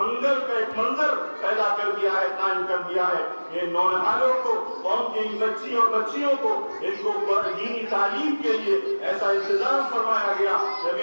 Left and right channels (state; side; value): inverted; both; correlation -1.00